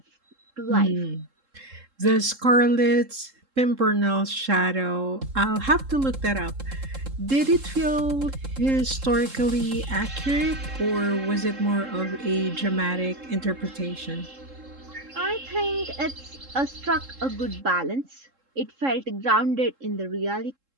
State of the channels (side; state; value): left; late; 3.7 ms